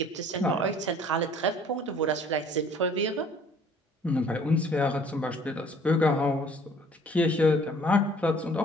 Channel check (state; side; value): normal; both; correlation 0.55